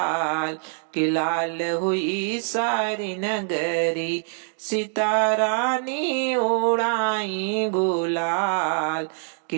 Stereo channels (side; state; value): left; silent; digital silence